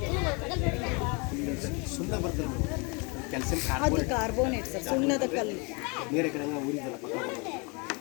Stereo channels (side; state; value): right; quieter; 31.5 dB